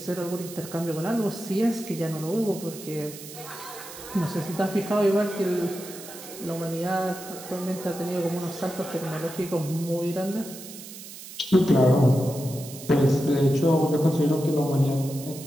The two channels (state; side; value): noise; right; hiss, 14 dB below the sound